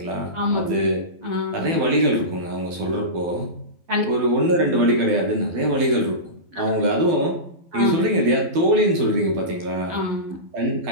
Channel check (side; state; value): left; late; 12 ms